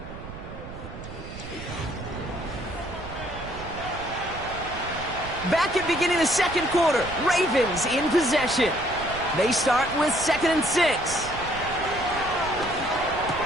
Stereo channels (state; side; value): noise; right; rumble, 12 dB below the sound